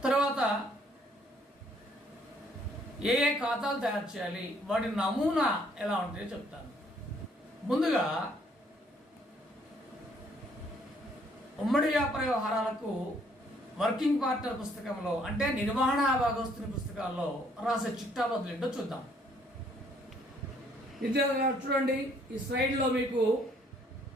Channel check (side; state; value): both; normal; correlation 0.65